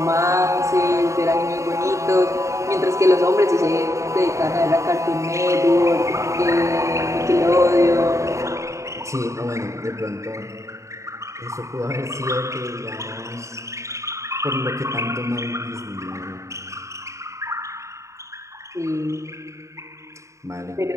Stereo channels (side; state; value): left; late; 0.14 ms